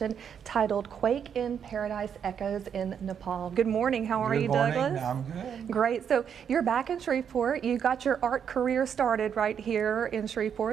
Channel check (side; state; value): left; quieter; 7.8 dB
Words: titled Quake in Paradise Echoes in Nepal. Good morning. How are you, Douglas? I'm good. Great. So you're back in Shreveport. You got your art career started right here in